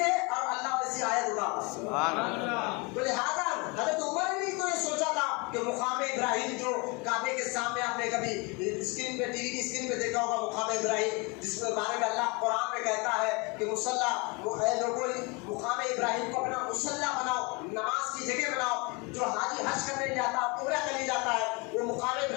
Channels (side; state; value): right; quieter; 28.8 dB